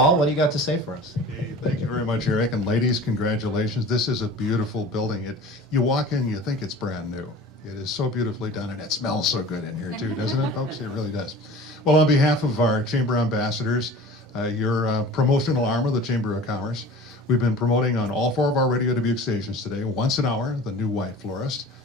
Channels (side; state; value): both; normal; correlation 0.40